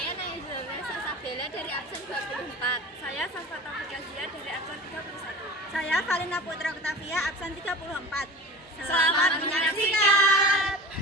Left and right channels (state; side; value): normal; both; correlation 0.35